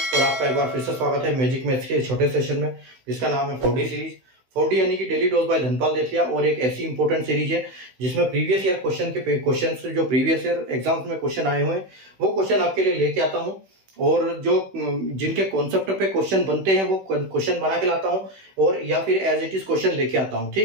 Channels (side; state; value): left; late; 16 ms